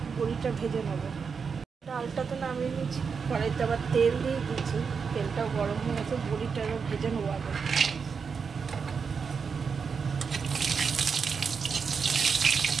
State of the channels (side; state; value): left; quieter; 5.8 dB